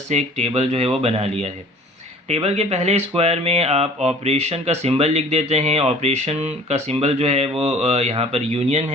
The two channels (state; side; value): normal; both; correlation 0.49